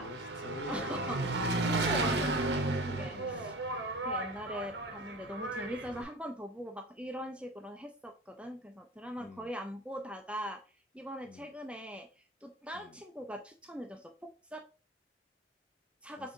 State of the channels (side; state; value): both; normal; correlation 0.35